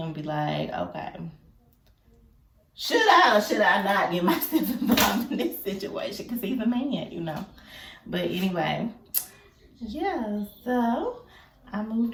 and be like, okay, should I or should I not get myself involved in this situation? Because he's a man, But anyway, yeah, so I moved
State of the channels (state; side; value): identical; both; correlation 1.00